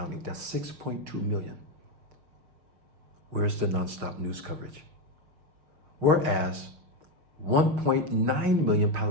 That's 6.2 million. Where's the nonstop news coverage? Whereas 1.9 million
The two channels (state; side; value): late; left; 6.2 ms